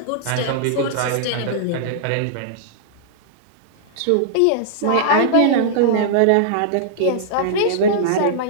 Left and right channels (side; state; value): both; different; correlation -0.02